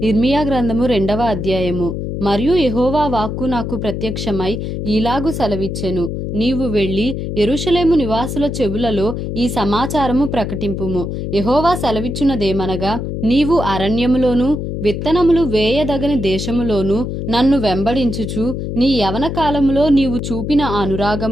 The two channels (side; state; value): left; noise; hum, 4 dB below the sound